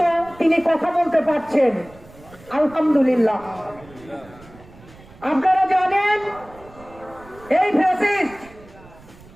তিনি কথা বলতে পারছেন, আলহামদুলিল্লাহ। আপনারা জানেন এই ফ্যাসিস্ট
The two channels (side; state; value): right; noise; rumble, 23 dB below the sound